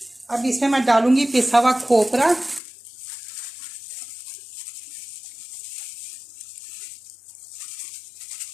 अब इसमें मैं डालूंगी पिसा हुआ खोपरा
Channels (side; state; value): right; drops out; at 2.6 s